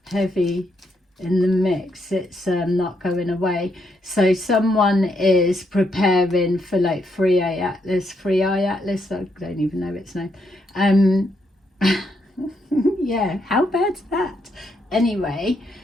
heavy in the mix. It's not going away. So someone is preparing for like Free AI Atlas, I don't even know its name. Yeah, how bad's that? Anyway,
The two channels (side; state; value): both; normal; correlation 0.77